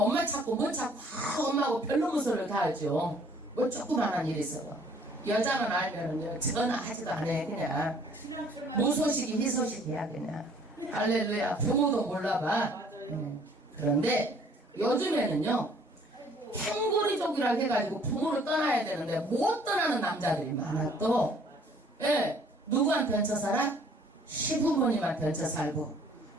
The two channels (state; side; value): normal; both; correlation 0.58